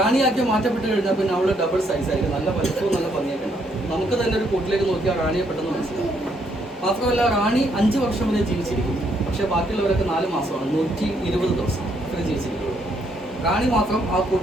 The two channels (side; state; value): both; normal; correlation 0.72